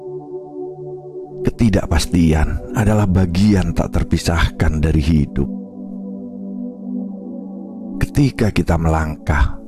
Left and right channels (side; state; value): both; identical; correlation 1.00